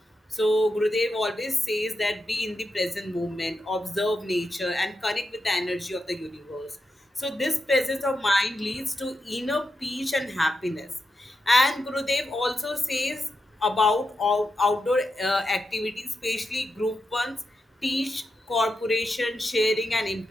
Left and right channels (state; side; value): normal; both; correlation 0.87